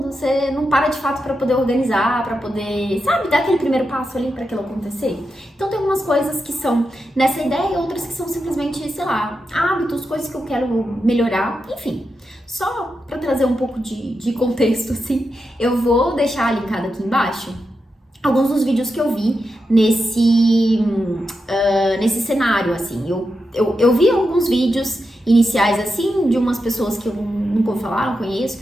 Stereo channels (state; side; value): normal; both; correlation 0.88